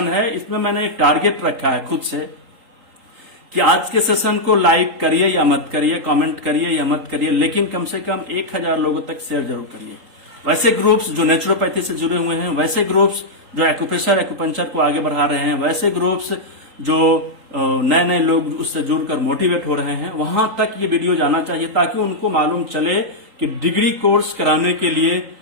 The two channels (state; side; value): late; left; 3.8 ms